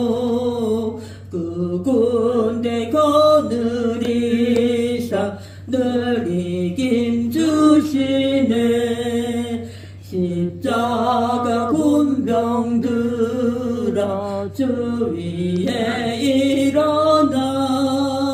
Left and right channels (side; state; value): both; identical; correlation 1.00